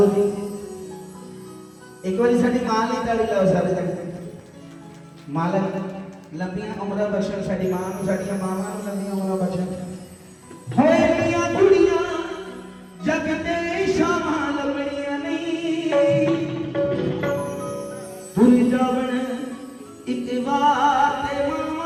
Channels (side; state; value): both; identical; correlation 1.00